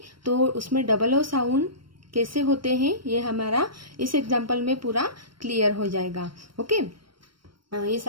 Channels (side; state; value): left; late; 0.73 ms